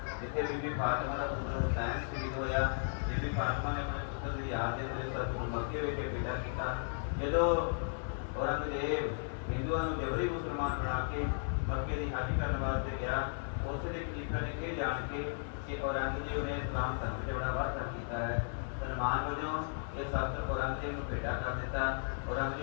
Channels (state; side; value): silent; right; digital silence